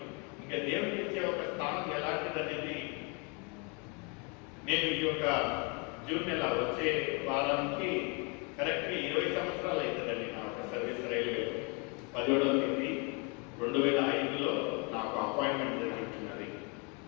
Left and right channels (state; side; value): quieter; right; 33.4 dB